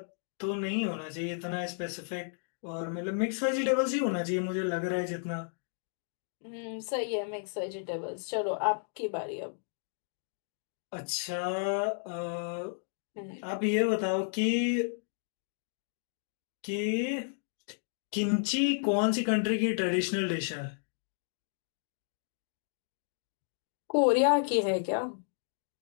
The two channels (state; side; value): silent; right; digital silence